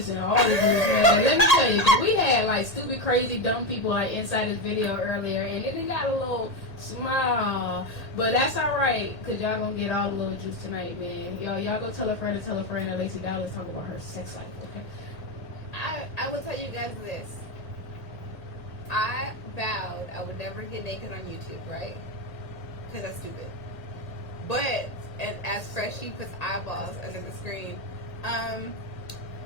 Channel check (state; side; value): late; right; 1.8 ms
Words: all this news, man. Let me tell you, because we had like stupid, crazy, dumb people like inside this video earlier, and it got a little small, but that's all right, because y'all gonna get all the little juice tonight, man. Y'all go tell a friend that Lacey Dallas talking about her sex life, okay? I will tell you guys this. I vowed I would never get naked on YouTube, right? Because that's stupid. But and as Freshie puts eyeballs under the screen, I